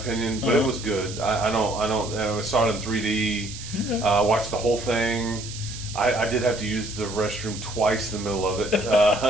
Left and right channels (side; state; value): right; noise; hiss, 12 dB below the sound